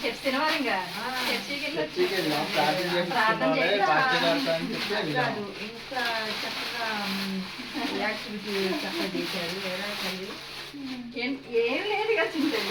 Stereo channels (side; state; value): both; identical; correlation 1.00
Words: చర్చి తినవారు ఇంకా చర్చికి చర్చికి వెళ్ళి వెళ్ళాం, ప్రార్థన చేసుకున్నాం, పార్టీ చేస్తాం అని చెప్పి వెళ్ళాం. కాదు, ఇంకా చక్కగా యాక్టివిటీ చక్కగా చేశారు. ఎలా తల్లి ఏం లేదు కదా